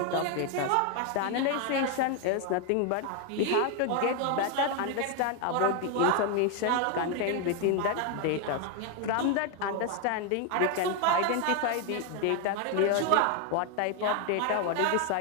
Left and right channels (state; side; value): different; both; correlation 0.01